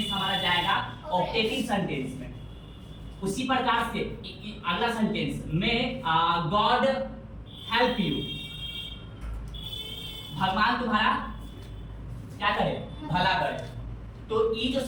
हमारा जाएगा ऑप्टेटिव सेंटेंस में। उसी प्रकार से अगला सेंटेंस में गॉड हेल्प यू, भगवान तुम्हारा क्या करे? भला करे। तो ये जो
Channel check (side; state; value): both; identical; correlation 1.00